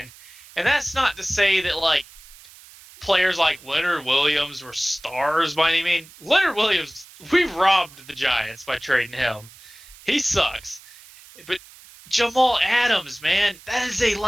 And that's not to say that, like, players like Leonard Williams were stars by any means. Leonard Williams, we robbed the Giants by trading him. He sucks. But Jamal Adams, man, that is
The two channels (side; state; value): right; noise; hiss, 22 dB below the sound